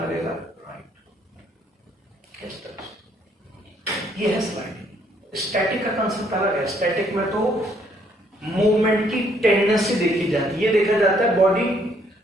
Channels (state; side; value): normal; both; correlation 0.67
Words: लगेगा? राइट। इस तरह से ये है स्लाइडिंग। स्टैटिक का कंसेप्ट अलग है। स्टैटिक में तो मूवमेंट की टेंडेंसी देखी जाती है। ये देखा जाता है बॉडी